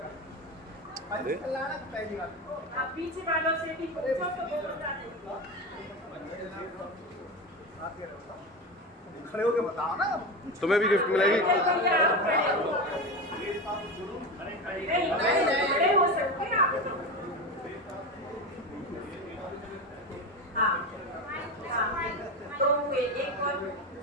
अरे आप पीछे वालों से भी पूछो तो वो बता देंगे। खड़े होके बताओ ना। तुम्हें भी गिफ्ट मिलेगी। नहीं, खड़े हो सकते हैं आप। हाँ, तो एक और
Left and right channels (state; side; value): normal; both; correlation 0.21